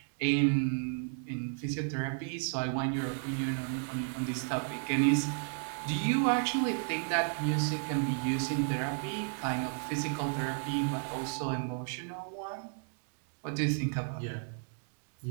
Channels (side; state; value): left; silent; 56 dB below the other